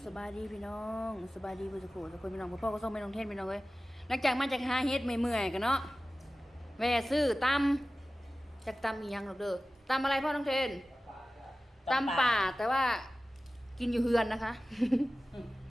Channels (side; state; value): both; normal; correlation 0.96